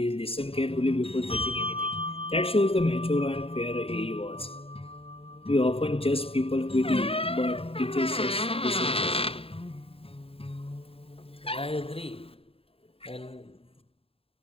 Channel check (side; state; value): right; late; 0.27 ms